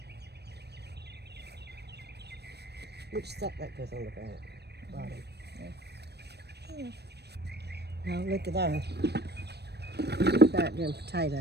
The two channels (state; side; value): late; left; 0.48 ms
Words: Which stuff that goes on the bottom? Yeah. Now look at that. Look at them